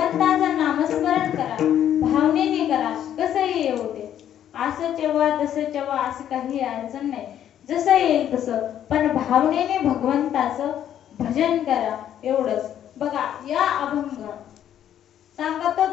नामस्मरण करा, भावनेने करा. कसंही येऊ दे, असं तेव्हा तसं तेव्हा असं काही अडचण नाही, जसं येईल तसं, पण भावनेने भगवंताचं भजन करा. एवढंच. बघा या अभंग सांगतो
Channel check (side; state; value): right; quieter; 10.5 dB